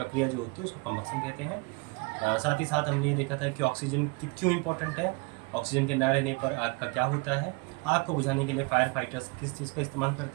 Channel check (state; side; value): quieter; left; 28.4 dB